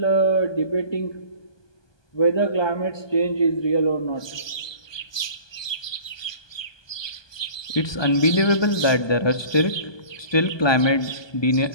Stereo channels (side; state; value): right; late; 1.2 ms